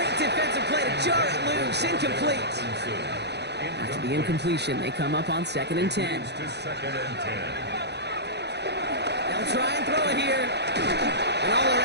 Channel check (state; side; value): late; left; 0.49 ms